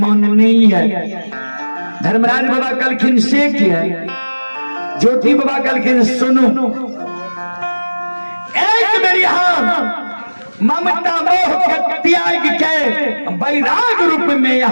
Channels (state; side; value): inverted; both; correlation -1.00